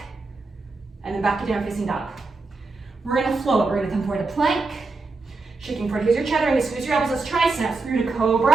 and then back to down facing dog. We're gonna float. We're gonna come forward to plank, shaking forward. Here's your chattering. Squeeze your elbows as triceps through to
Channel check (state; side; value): quieter; left; 3.7 dB